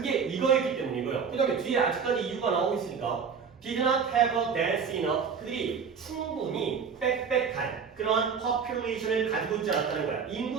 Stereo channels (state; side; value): quieter; left; 6.1 dB